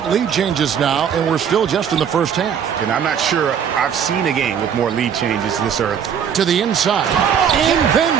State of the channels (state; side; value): quieter; left; 8.0 dB